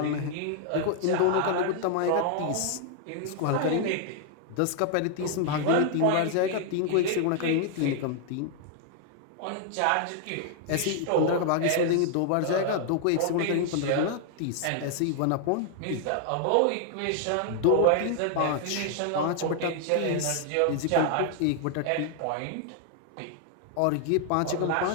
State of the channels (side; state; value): both; different; correlation 0.00